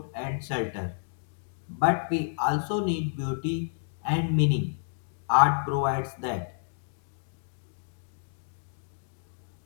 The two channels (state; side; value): silent; right; digital silence